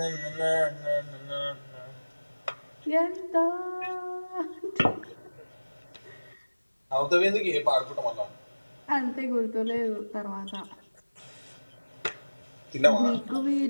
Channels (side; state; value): both; inverted; correlation -1.00